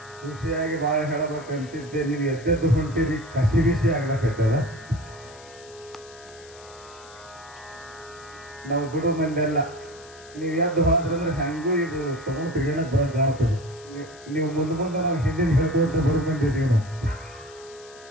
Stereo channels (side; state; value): left; noise; hiss, 21 dB below the sound